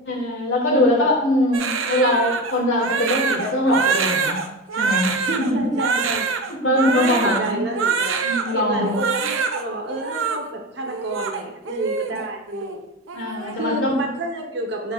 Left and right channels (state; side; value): normal; both; correlation 0.23